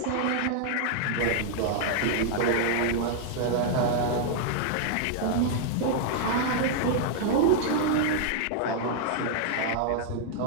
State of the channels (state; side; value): different; both; correlation -0.01